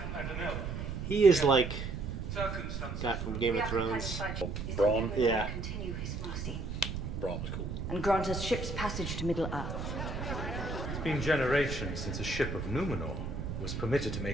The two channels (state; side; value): noise; right; rumble, 5 dB below the sound